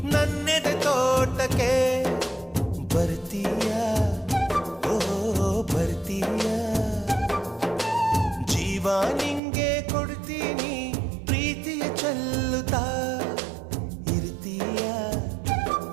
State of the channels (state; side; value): drops out; left; at 9.4 s